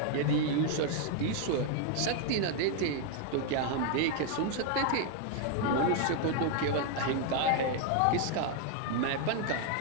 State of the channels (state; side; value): different; both; correlation 0.01